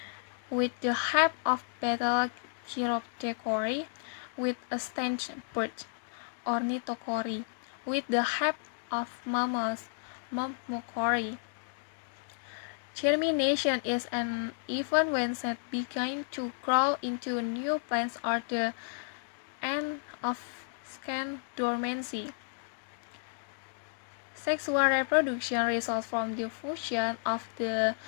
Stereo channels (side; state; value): right; silent; digital silence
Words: with the help of betel chiroptechory, with a stench bird ornithochory, with the help of mammals myrmecochory. Germination is an event when seeds begin to grow into new plants or the end of Second, dormancy. Sexual reproduction results from the fusion of the